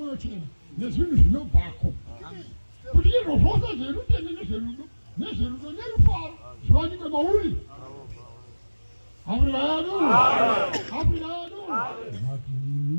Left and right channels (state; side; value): inverted; both; correlation -1.00